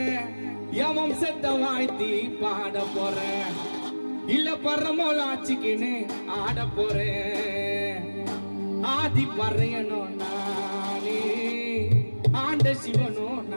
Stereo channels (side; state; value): both; inverted; correlation -1.00